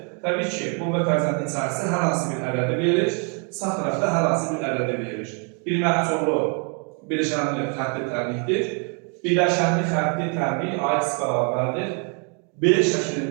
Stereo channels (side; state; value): left; quieter; 38.4 dB